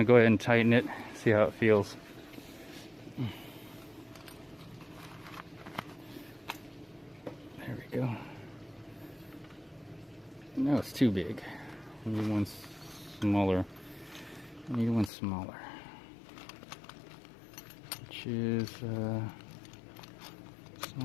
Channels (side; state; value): right; drops out; at 15.1 s